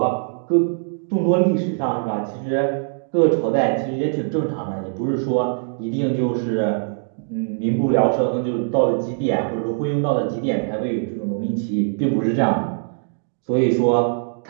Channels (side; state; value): left; silent; digital silence